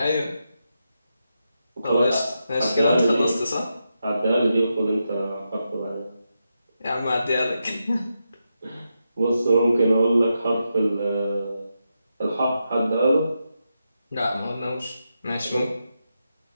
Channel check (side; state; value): both; inverted; correlation -0.86